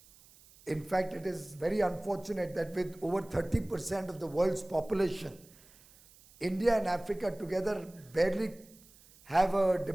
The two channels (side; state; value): right; noise; hiss, 25 dB below the sound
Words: In fact, it is very unfortunate that with over 30% of the world's population, India and Africa together barely have a